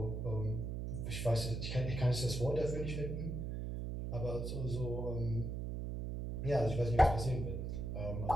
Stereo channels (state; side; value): noise; right; hum, 3 dB below the sound